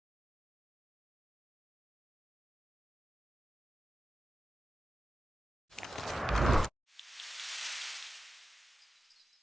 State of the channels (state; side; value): normal; both; correlation 0.92